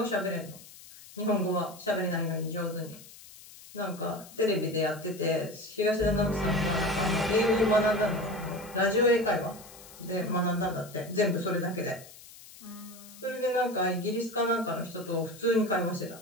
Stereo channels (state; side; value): noise; left; hiss, 19 dB below the sound